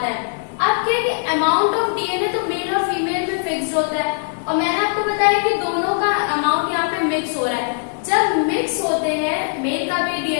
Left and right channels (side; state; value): right; silent; digital silence